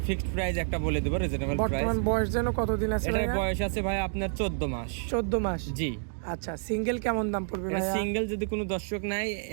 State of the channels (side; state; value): left; silent; digital silence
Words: ফিক্সড প্রাইস একটা বলে দেব, রিজনেবল প্রাইস। বর্তমান বয়স যেন কতদিন আছে এটার ভাইয়া? বয়স আছে ভাই আপনার 14 মাস। 14 মাস? জি। আচ্ছা, সিঙ্গেল কেমন দাম পড়বে ভাইয়া? সিঙ্গেল যদি কোনো দর্শক নাই